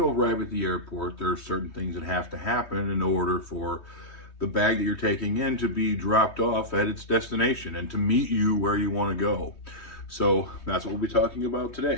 arrive at the airport, there are certain things that have to happen in order for the bag that you're taking in to be dropped off at its destination and to meet you where you want to go. So that's what we'll be talking about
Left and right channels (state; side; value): late; right; 3.2 ms